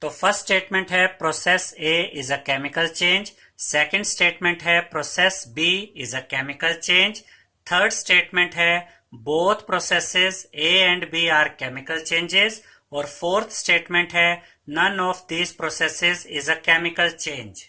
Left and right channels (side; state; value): both; identical; correlation 1.00